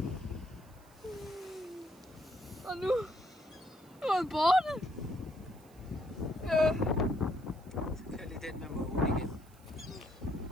Og nu er han borte. Så kører lige den med mågen igen.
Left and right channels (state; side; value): noise; right; hiss, 28 dB below the sound